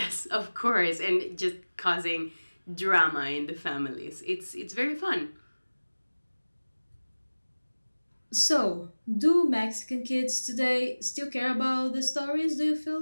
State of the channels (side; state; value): both; inverted; correlation -1.00